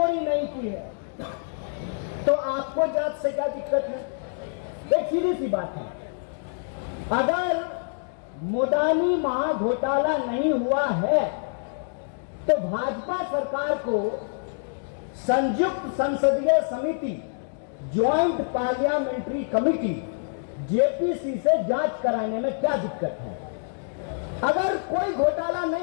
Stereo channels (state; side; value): silent; right; digital silence